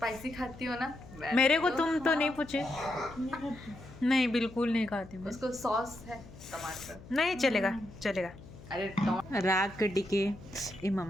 खाती हो ना मेरे को तुम तो नहीं पूछे नहीं बिल्कुल नहीं खाती मैं उसको सॉस है टमाटर नहीं चलेगा चलेगा अरे राग के टिके ए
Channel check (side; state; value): left; noise; hum, 18 dB below the sound